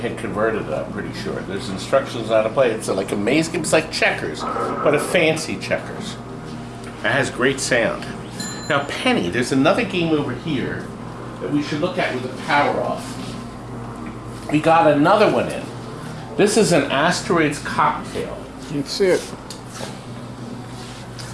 converted it, I'm pretty sure. There's instructions on how to play. It's like a maze game. It's like checkers, but a fancy checkers. It has great sound. Now, Penny, there's another game over here that we should look at with the power off. We got another one in. This is an Asteroids Cocktail. That's it.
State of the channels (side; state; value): both; identical; correlation 1.00